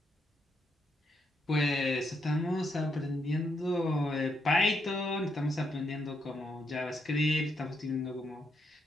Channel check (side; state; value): both; normal; correlation 0.78